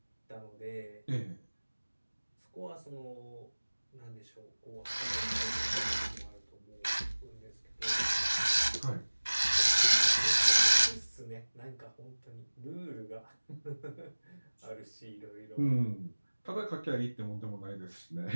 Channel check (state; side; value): inverted; both; correlation -1.00